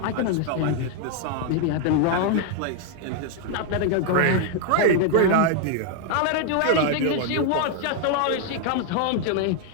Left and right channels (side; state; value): both; different; correlation 0.00